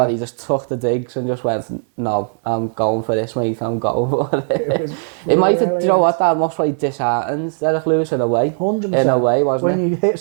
that he just took the digs and just went, no, I'm going for this, mate, I'm going for it. It might have, you know what, that must have disheartened Derek Lewis in a way. 100%. In a way, wasn't it? When you hit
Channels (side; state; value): left; silent; digital silence